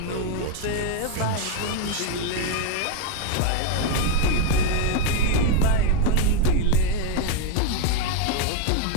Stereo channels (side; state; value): both; different; correlation 0.02